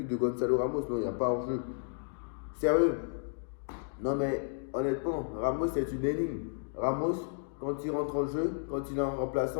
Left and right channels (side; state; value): right; silent; digital silence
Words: de Gonzalo Ramos. Non, il n'y a pas hors-jeu. Sérieux. Non mais, honnêtement, Ramos c'est une énigme. Ramos, quand il rentre en jeu, quand il est en